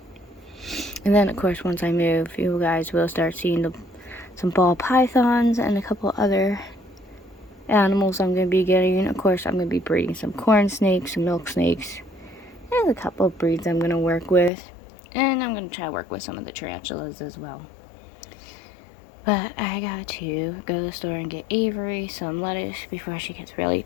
And then of course once I move, you guys will start seeing some ball pythons and a couple other animals I'm going to be getting. Of course I'm going to be breeding some corn snakes, some milk snakes. There's a couple of breeds I'm going to work with. And I'm going to try to work with some of the tarantulas as well. But I got to go to the store and get Avery some lettuce before she gets really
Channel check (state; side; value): drops out; right; at 14.5 s